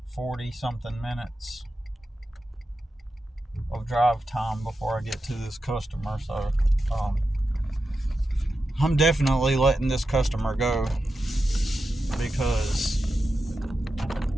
40 something minutes of drive time before I get to this customer, so I'm definitely letting this customer go because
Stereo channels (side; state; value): both; normal; correlation 0.90